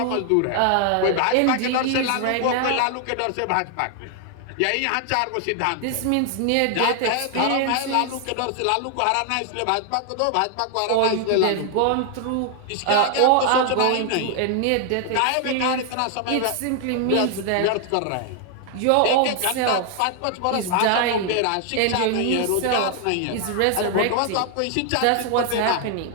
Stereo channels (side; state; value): both; different; correlation 0.00